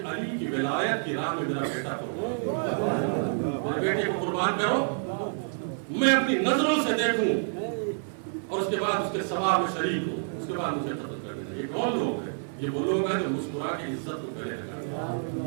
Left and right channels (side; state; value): left; silent; 56 dB below the other